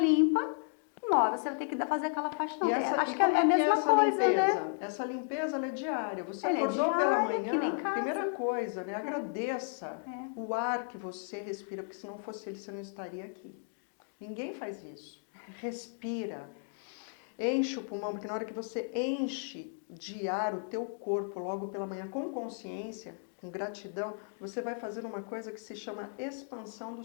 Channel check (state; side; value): silent; right; 55 dB below the other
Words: uma hora você vai ter que fazer aquela faxina. Acho que é a mesma coisa, limpeza? Né? Essa limpeza, ela é diária. Você acordou pela manhã, primeira coisa, né? Agradeça o ar que você respira, porque se não fosse ele, você não estaria aqui. Ninguém faz isso. Respira. Enche o pulmão, porque na hora que você enche de ar o teu corpo logo pela manhã com consciência, com gratidão, você vai fazer uma coisa que se chama expansão